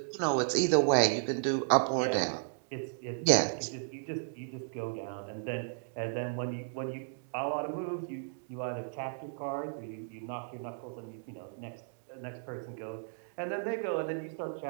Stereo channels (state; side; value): silent; left; digital silence